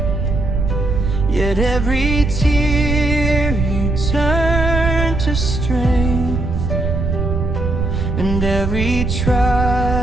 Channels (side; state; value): right; noise; rumble, 1 dB below the sound